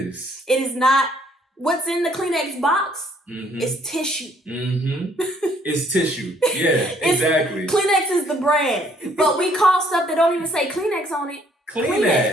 It is not, what's in the Kleenex box is tissue. It's tissue. Yeah, exactly. Kleenex is the brand. But we call stuff that don't even say Kleenex on it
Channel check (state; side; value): normal; both; correlation 0.64